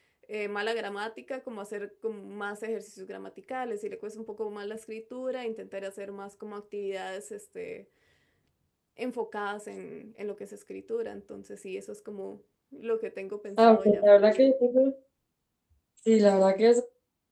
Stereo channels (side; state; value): both; identical; correlation 1.00